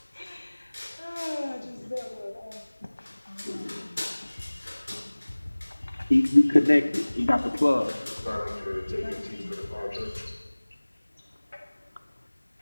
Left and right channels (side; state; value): both; inverted; correlation -1.00